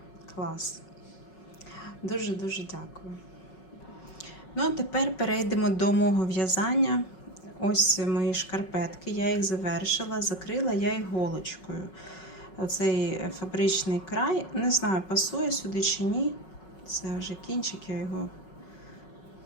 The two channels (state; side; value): late; right; 5.4 ms